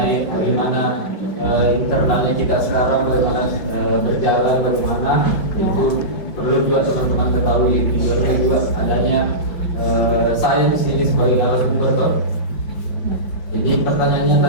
bagaimana internalnya kita sekarang, bagaimana berjalan, bagaimana itu perlu juga teman-teman ketahui. Tujuannya juga adanya saya di sini sebagai narasumber toh. Jadi pertanyaannya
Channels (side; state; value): right; late; 5.1 ms